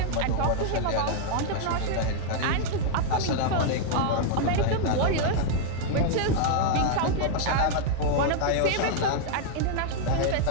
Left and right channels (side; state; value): both; different; correlation 0.00